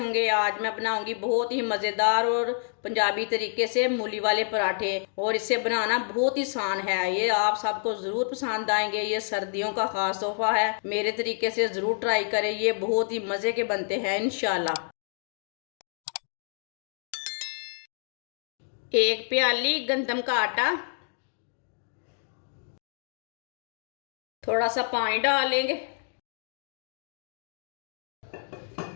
आज मैं बनाऊंगी बहुत ही मज़ेदार और पंजाबी तरीके से मूली वाले पराठे, और इसे बनाना बहुत ही आसान है। ये आप सबको ज़रूर पसंद आएंगे। ये सर्दियों का ख़ास तोहफा है। मेरे तरीके से ज़रूर ट्राई करें, ये बहुत ही मज़े के बनते हैं इंशाल्लाह। एक प्याली गंदम का आटा, थोड़ा सा पानी डाल लेंगे,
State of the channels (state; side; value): silent; right; digital silence